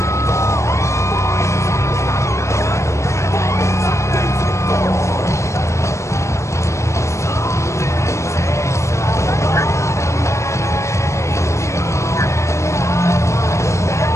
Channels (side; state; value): right; late; 0.14 ms